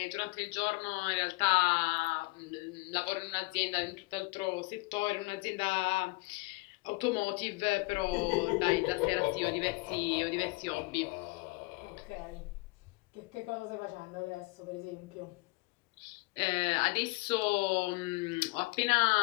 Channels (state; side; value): quieter; right; 25.4 dB